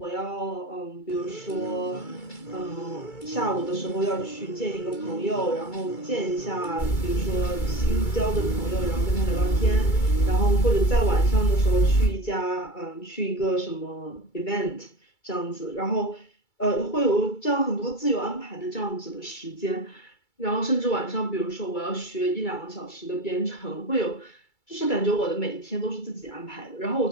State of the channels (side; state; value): right; late; 2.3 ms